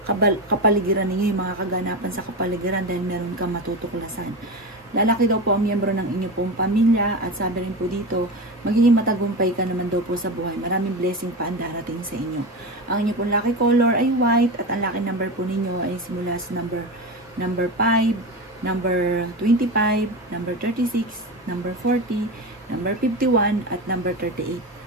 kapaligiran ninyo, yung mga kaganapan sa kapaligiran dahil meron kang matutuklasan. Lalaki daw po ang miyembro ng inyong pong pamilya at sabi rin po dito, magiging matagumpay ka naman daw po sa buhay. Maraming blessing pa ang darating sa inyo. Ang inyong pong lucky color ay white at ang lucky number po ninyo ay simula sa number 5, number 25, number 36, number 40, number 51, at number 38.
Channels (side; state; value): both; normal; correlation 0.22